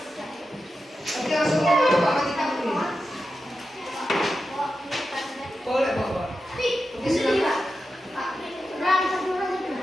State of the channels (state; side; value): normal; both; correlation 0.90